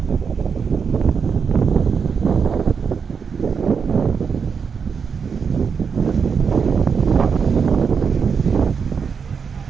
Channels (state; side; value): quieter; left; 6.1 dB